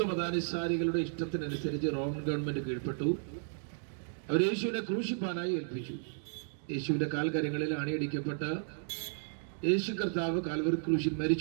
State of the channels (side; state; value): left; silent; digital silence